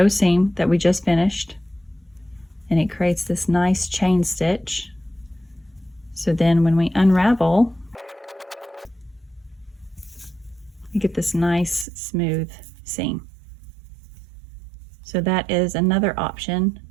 seam that we just finished, and it creates this nice chain stitch. So then when we unravel, we get this nice smooth seam. So that is another option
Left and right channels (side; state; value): left; drops out; at 11.9 s